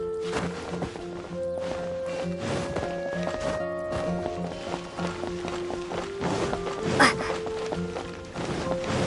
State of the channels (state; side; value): identical; both; correlation 1.00